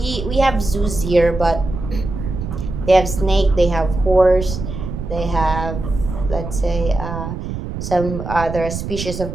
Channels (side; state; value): right; noise; rumble, 6 dB below the sound